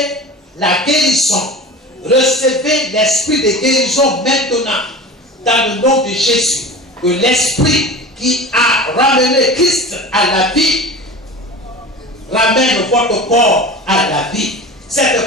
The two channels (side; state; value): both; normal; correlation 0.34